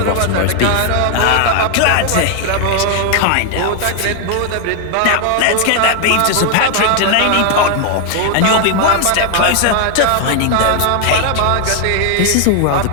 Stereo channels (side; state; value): both; different; correlation 0.00